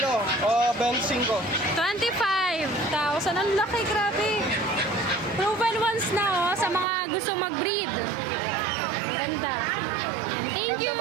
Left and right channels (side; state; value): left; drops out; at 6.9 s